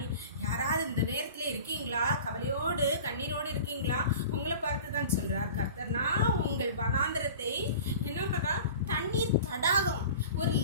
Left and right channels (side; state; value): both; inverted; correlation -0.39